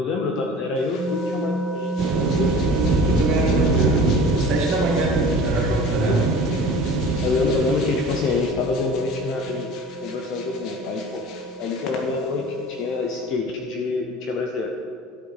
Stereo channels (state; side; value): normal; both; correlation 0.41